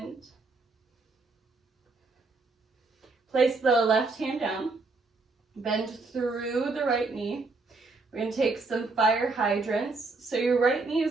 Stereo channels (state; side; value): quieter; left; 3.7 dB